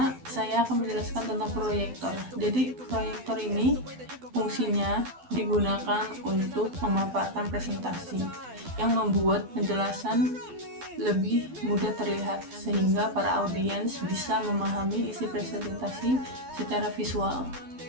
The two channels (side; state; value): left; late; 12 ms